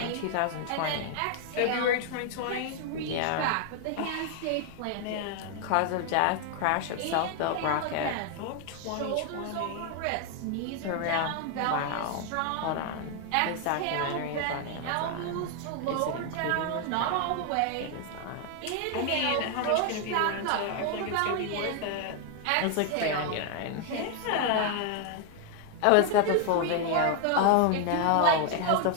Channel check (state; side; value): different; both; correlation 0.00